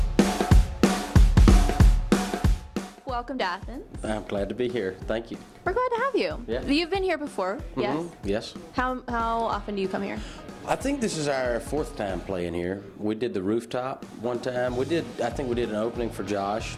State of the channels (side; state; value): both; identical; correlation 1.00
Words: Welcome to Athens. I'm glad to be here. Thank you. We're glad to have you. Yeah. You've been here before, yes? Yes. How often do you come here? I think this is our fourth time playing here. We did the rooftop one time. I think we did an opening for Josh,